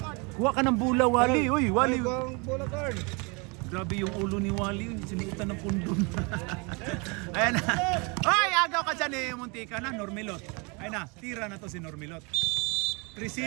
Kuha ka ng bula, Wally. Uy, Wally. Bola card. Grabe yung ulo ni Wally. Sinuutan ng pundon. Ayan na. Ay, agaw ka dyan eh. Muntika na. Normilot. Ayan na. Tira na to si Normilot. 3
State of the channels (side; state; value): left; quieter; 30.7 dB